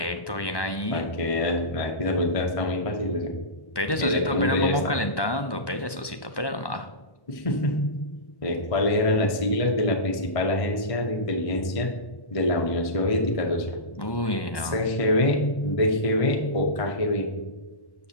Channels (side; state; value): right; late; 1.2 ms